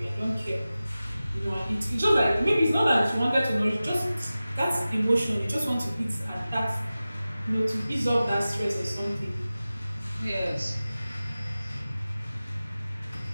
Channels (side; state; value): both; inverted; correlation -0.96